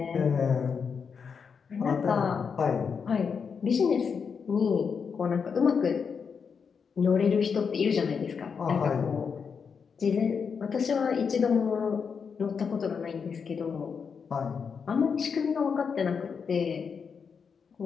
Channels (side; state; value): right; quieter; 6.1 dB